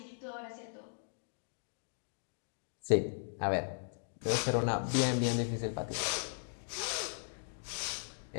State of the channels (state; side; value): silent; right; digital silence